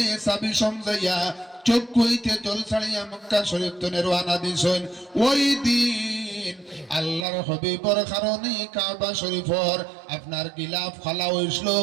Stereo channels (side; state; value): left; drops out; at 7.2 s